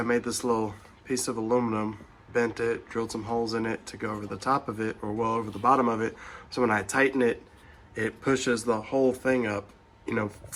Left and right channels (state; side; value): identical; both; correlation 1.00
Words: made this little piece of aluminum, bent it, drilled some holes in it to go over the top of it, or well over the bottom of it. So when I tighten it, it pushes the whole thing up, you know,